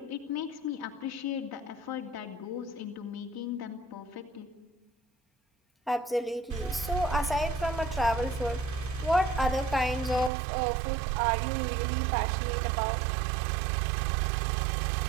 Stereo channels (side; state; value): left; drops out; at 10.3 s